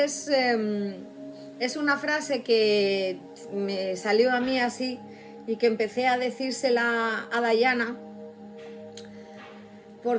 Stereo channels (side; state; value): both; identical; correlation 1.00